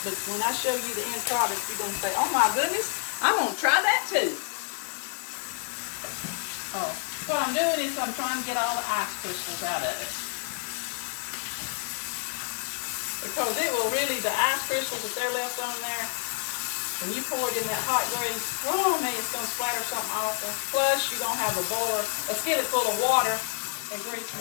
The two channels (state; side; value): silent; right; 59 dB below the other